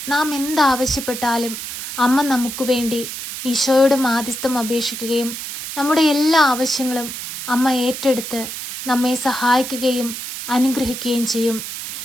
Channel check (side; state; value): right; noise; hiss, 7 dB below the sound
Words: നാം എന്താവശ്യപ്പെട്ടാലും അമ്മ നമുക്ക് വേണ്ടി ഈശോയോട് മാധ്യസ്ഥം അപേക്ഷിക്കുകയും നമ്മുടെ എല്ലാ ആവശ്യങ്ങളും അമ്മ ഏറ്റെടുത്ത് നമ്മെ സഹായിക്കുകയും അനുഗ്രഹിക്കുകയും ചെയ്യും.